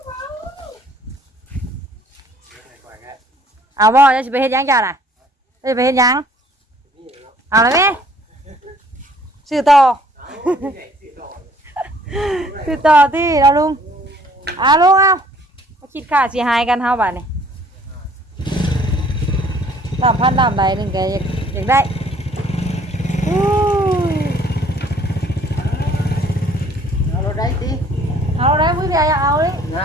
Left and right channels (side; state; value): both; normal; correlation 0.58